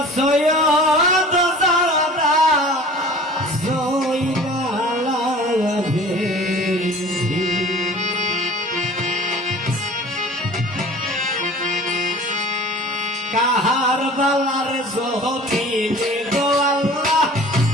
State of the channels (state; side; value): normal; both; correlation 0.44